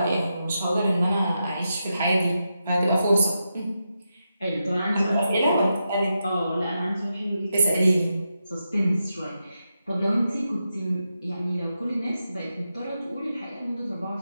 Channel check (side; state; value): both; inverted; correlation -0.87